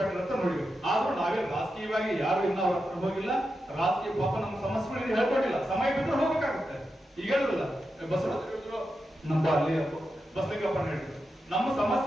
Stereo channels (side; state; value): both; normal; correlation 0.89